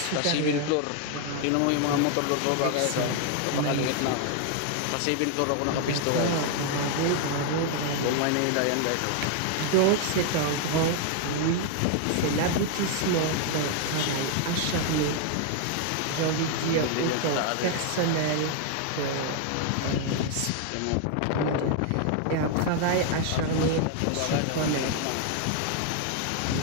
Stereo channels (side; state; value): both; different; correlation 0.00